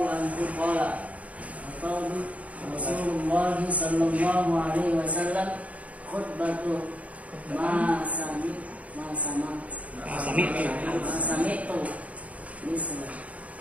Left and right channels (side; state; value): left; late; 0.067 ms